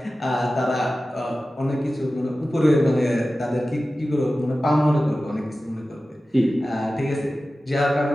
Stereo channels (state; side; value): normal; both; correlation 0.95